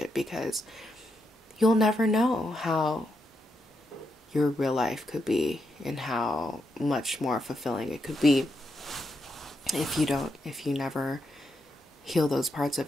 because you'll never know how your real life could be and how much more fulfilling it could be if you never heal those parts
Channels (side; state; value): both; normal; correlation 0.82